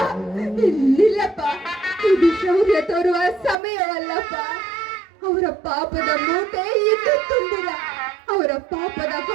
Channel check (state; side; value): drops out; left; at 3.6 s